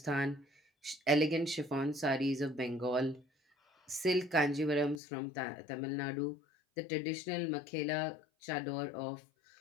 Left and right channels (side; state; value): right; drops out; at 5.0 s